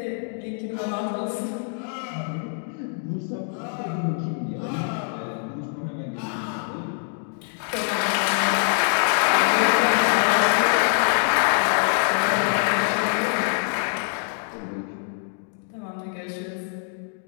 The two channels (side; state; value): right; silent; 62 dB below the other